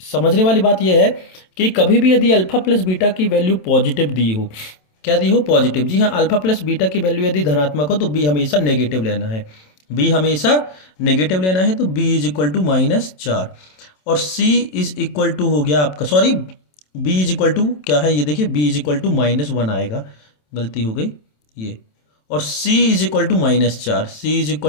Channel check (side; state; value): right; late; 27 ms